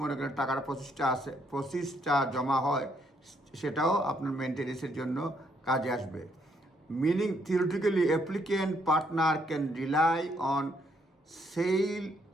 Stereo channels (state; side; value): normal; both; correlation 0.71